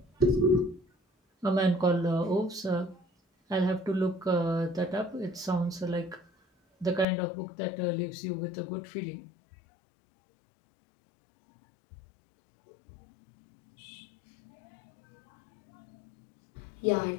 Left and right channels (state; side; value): drops out; right; at 7.1 s